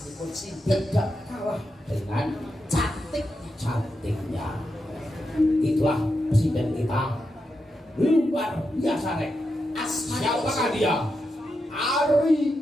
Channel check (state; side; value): normal; both; correlation 0.86